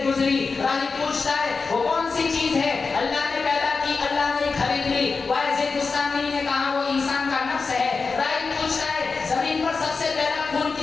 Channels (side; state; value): right; quieter; 4.5 dB